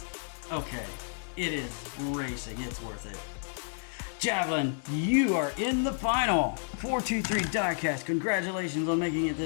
Okay, it is racing. It's worth it. Javelin, you are in the final. 423 Diecast, congratulations on making it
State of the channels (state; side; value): silent; right; digital silence